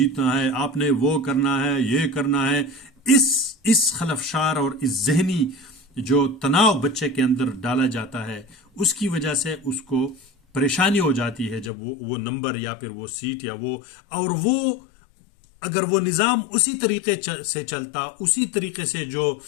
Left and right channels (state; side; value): drops out; right; at 11.7 s